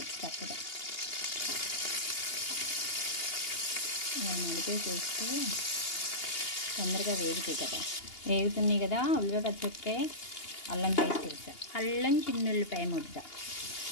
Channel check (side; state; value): right; late; 2.8 ms